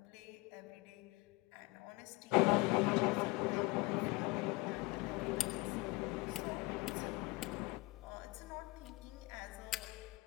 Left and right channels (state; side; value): quieter; right; 22.3 dB